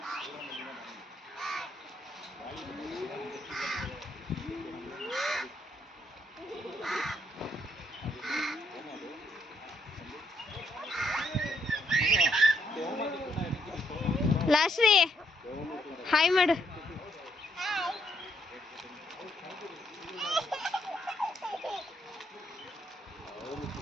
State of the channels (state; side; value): normal; both; correlation 0.73